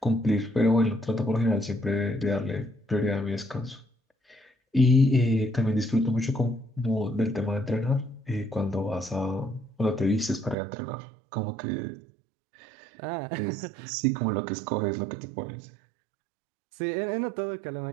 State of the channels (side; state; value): left; drops out; at 10.6 s